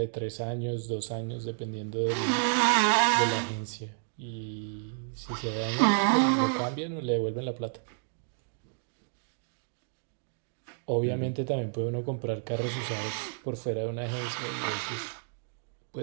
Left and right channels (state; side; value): silent; left; digital silence